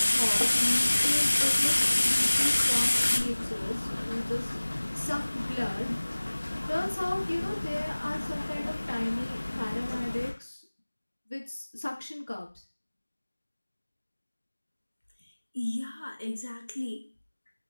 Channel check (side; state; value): both; inverted; correlation -1.00